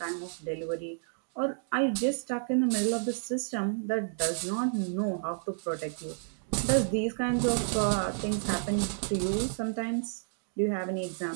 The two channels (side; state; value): left; silent; digital silence